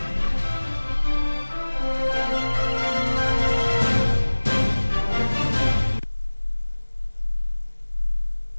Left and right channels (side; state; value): both; inverted; correlation -1.00